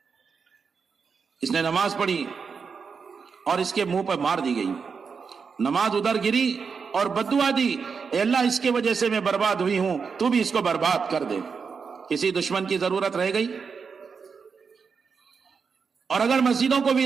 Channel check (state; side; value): quieter; left; 5.6 dB